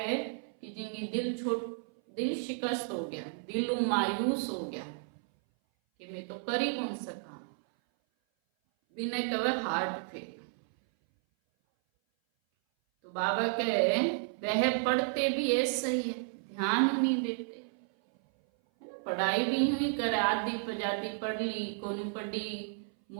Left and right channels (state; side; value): silent; left; 56 dB below the other